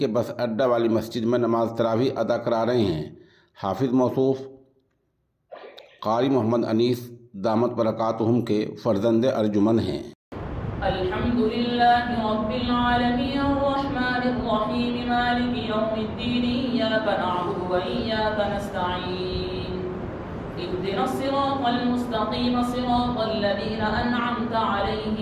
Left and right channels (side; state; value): both; identical; correlation 1.00